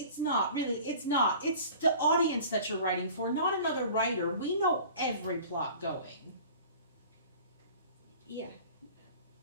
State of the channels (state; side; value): inverted; both; correlation -0.43